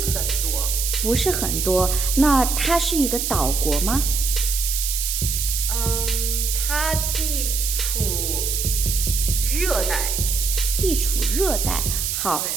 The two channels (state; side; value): noise; right; hiss, 1 dB below the sound